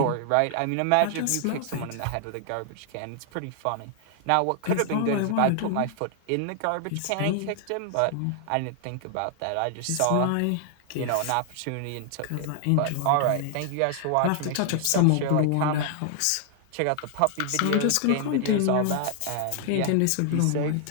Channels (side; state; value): both; different; correlation 0.00